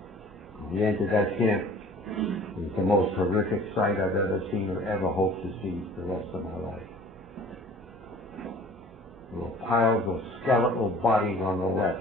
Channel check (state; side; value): normal; both; correlation 0.48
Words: We entered that camp. It was the most horrific sight I've ever seen or ever hope to see the rest of my life. There were piles of skeletal bodies on the